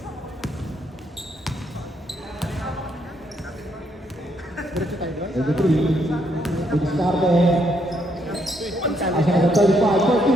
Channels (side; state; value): both; normal; correlation 0.74